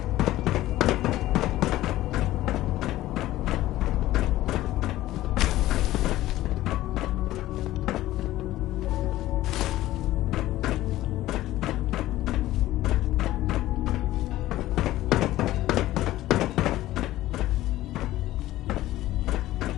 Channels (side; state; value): right; quieter; 15.4 dB